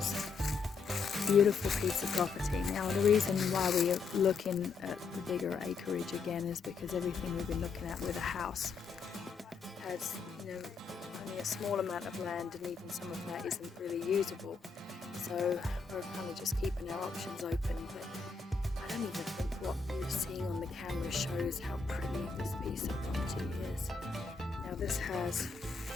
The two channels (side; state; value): right; quieter; 4.8 dB